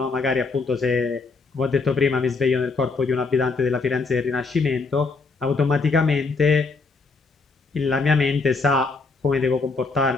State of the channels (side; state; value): right; quieter; 4.1 dB